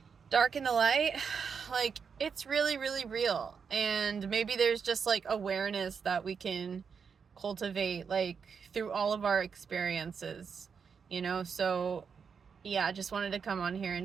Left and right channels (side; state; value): left; quieter; 6.2 dB